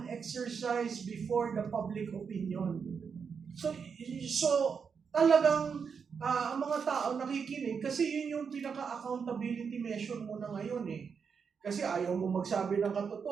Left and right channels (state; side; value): quieter; left; 6.2 dB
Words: exercise before the public opinion. So talagang ang mga tao nakikinig kasi yun yung pinaka-accountability measure mo na ngayon Kasi ayaw mo magsabi ng